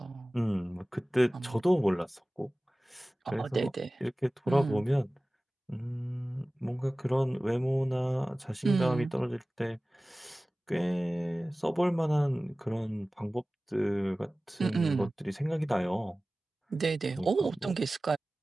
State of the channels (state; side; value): normal; both; correlation 0.97